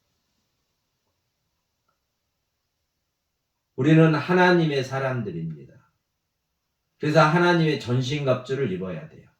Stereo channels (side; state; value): both; identical; correlation 1.00